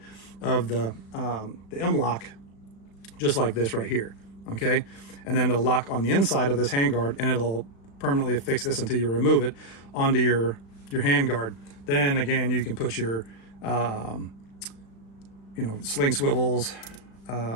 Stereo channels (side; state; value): right; late; 36 ms